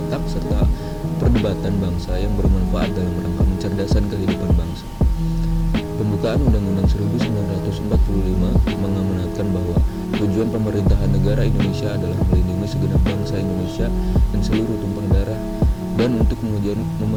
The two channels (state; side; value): identical; both; correlation 1.00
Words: serta perdebatan bangsa yang bermanfaat dalam rangka mencerdaskan kehidupan bangsa. Pembukaan Undang-Undang 1945 mengamanatkan bahwa tujuan pemerintahan negara Indonesia adalah melindungi segenap bangsa Indonesia dan seluruh tumpah darah, dan untuk